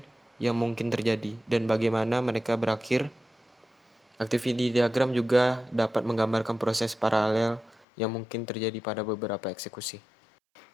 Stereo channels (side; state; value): right; drops out; at 7.9 s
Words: yang mungkin terjadi, dan bagaimana mereka berakhir. Activity diagram juga dapat menggambarkan proses paralel yang mungkin terjadi pada beberapa eksekusi.